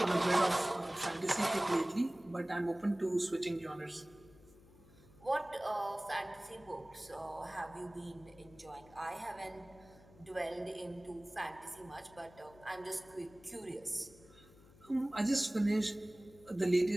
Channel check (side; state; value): left; noise; hum, 23 dB below the sound